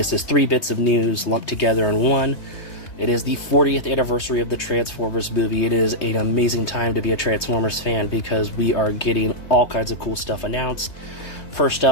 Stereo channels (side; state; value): right; late; 3.2 ms